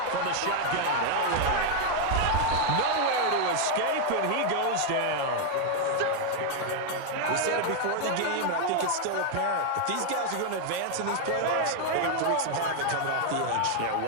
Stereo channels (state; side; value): different; both; correlation 0.01